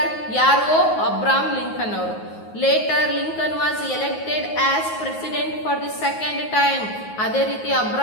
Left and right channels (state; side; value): late; right; 9.4 ms